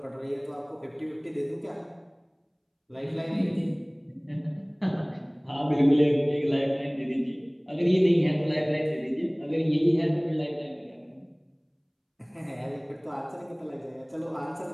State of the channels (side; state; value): both; identical; correlation 1.00